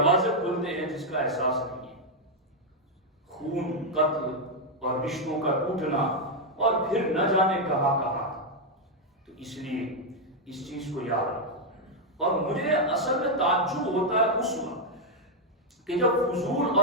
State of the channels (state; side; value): normal; both; correlation 0.00